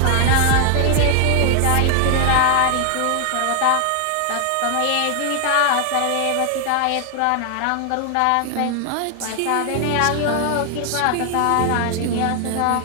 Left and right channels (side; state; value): both; different; correlation 0.00